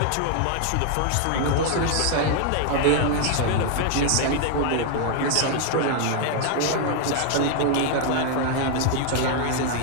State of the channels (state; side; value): different; both; correlation 0.00